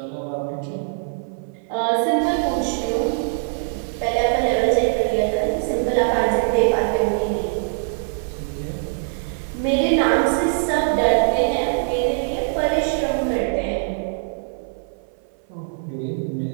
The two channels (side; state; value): left; silent; 58 dB below the other